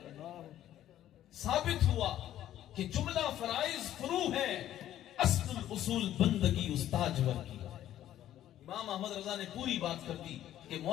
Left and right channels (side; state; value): right; quieter; 12.3 dB